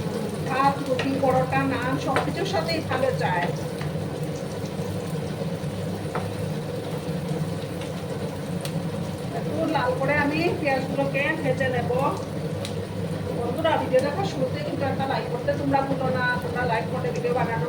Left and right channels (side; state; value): both; identical; correlation 1.00